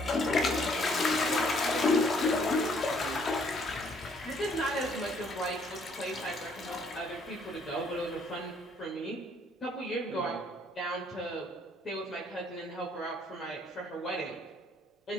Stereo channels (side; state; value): both; normal; correlation 0.65